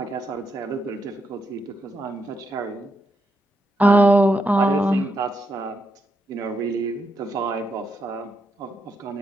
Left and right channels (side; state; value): both; normal; correlation 0.82